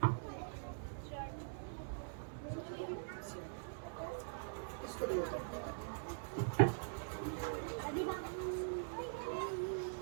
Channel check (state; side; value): silent; left; digital silence